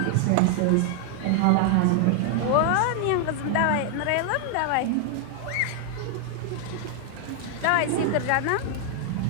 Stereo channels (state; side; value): different; both; correlation 0.00